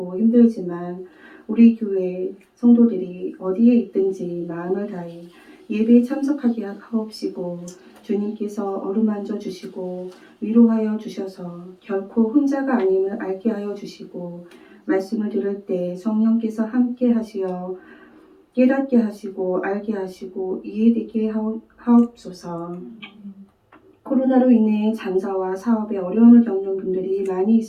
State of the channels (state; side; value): identical; both; correlation 1.00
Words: 힘들지만 우리 교회 성도들이 어디에 있든지 마음을 다해 예배에 참석하게 하옵시고 주님께서 어루만져 주시고 위로하여 주셔서 결코 혼자가 아님을 알게 하여 주시고 말씀을 들을 때 성령께서 함께 하시어 깨닫게 하시고 알게 하시고 이해되게 하옵소서. 코로나로 인해 장사와 사업에 어려움을 겪는 분들이 많이